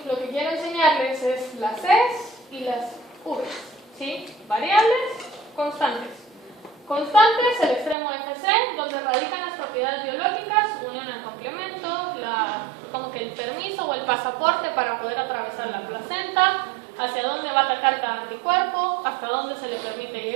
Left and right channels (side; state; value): left; drops out; at 8.0 s